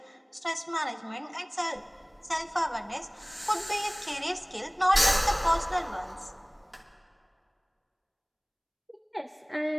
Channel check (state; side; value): identical; both; correlation 1.00